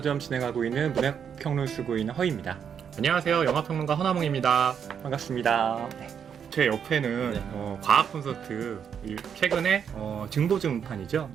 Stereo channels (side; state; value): left; quieter; 7.7 dB